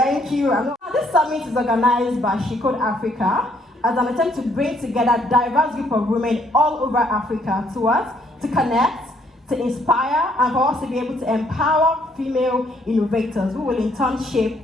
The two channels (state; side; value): normal; both; correlation 0.67